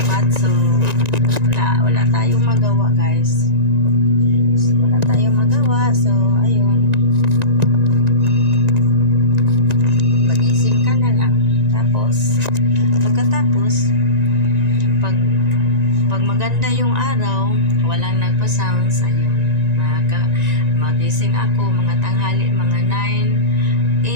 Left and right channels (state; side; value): late; left; 1.9 ms